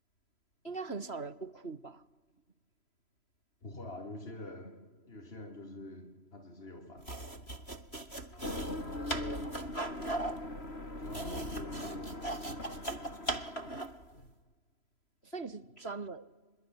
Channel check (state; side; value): late; right; 3.0 ms